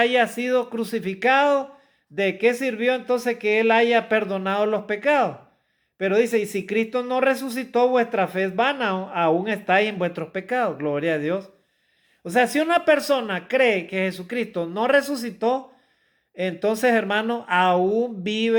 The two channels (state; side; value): identical; both; correlation 1.00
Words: sido crucificado. ¿De qué sirvió entonces que Él haya perdonado los pecados? Pero dice, y si Cristo no resucitó, vuestra fe es vana, aún estáis en vuestros pecados. Gloria a Dios. O sea, si una persona cree que Jesucristo no resucitó, entonces, hermano, aún